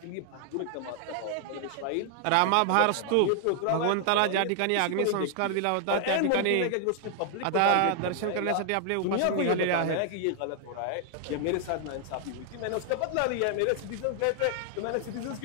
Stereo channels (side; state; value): both; different; correlation 0.00